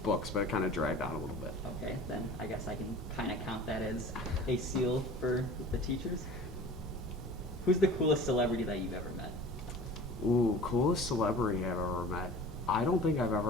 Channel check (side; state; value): both; normal; correlation 0.41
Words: books, but it kind of dragged on a little bit. Okay, then I guess I can kind of count that as a seal for the teachers. Who's the coolest celebrity that you've ever met? Ooh, coolest celebrity I've ever met. I don't think I've